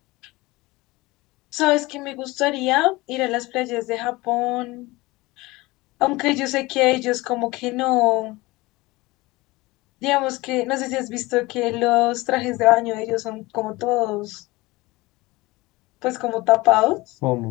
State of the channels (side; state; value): right; quieter; 21.3 dB